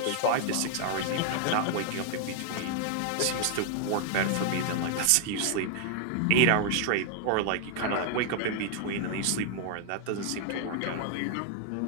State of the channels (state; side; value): different; both; correlation 0.00